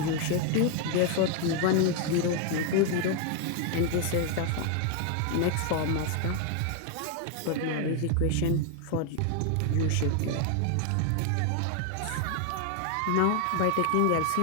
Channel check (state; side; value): different; both; correlation 0.01